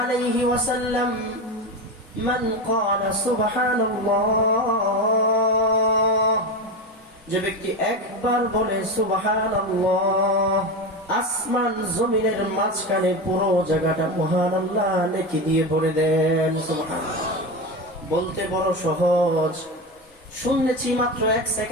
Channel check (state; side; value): normal; both; correlation 0.20